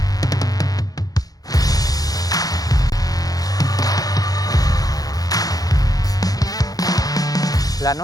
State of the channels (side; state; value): right; late; 0.18 ms